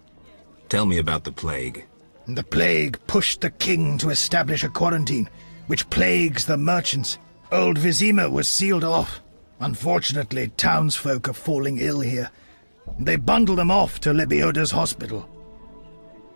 Tell me about the plague. The plague pushed the king to establish a quarantine, which plagues the merchants. Old Vizima was sealed off. Unfortunately, townsfolk are falling ill here. They bundle them off to Lebioda's hospital.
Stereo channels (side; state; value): both; inverted; correlation -1.00